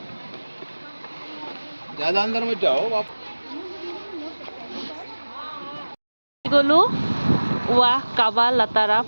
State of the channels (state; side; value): inverted; both; correlation -1.00